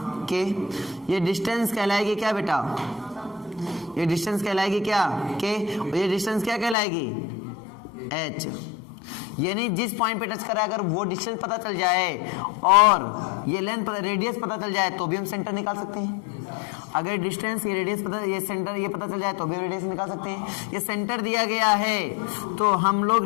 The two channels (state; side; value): drops out; right; at 6.8 s